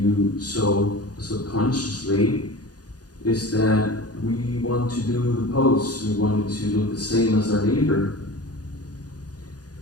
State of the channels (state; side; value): late; right; 0.68 ms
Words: so subconsciously is that we want to do the pose. We want it to look the same as our neighbor.